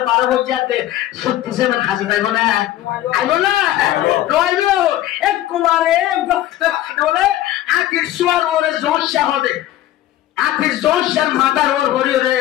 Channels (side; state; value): right; quieter; 13.8 dB